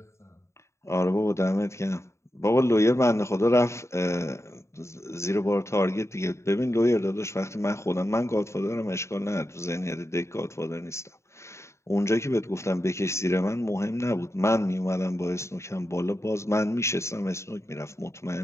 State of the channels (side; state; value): right; late; 0.14 ms